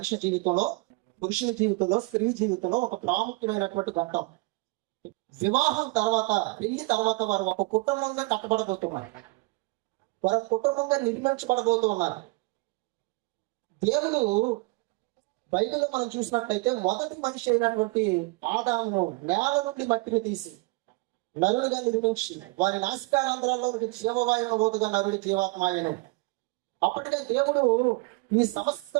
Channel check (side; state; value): left; quieter; 25.2 dB